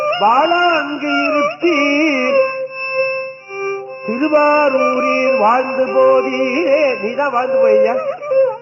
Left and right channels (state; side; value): identical; both; correlation 1.00